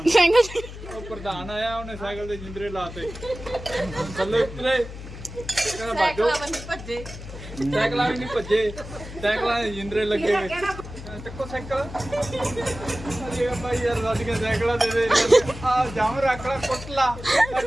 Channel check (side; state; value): left; noise; hum, 12 dB below the sound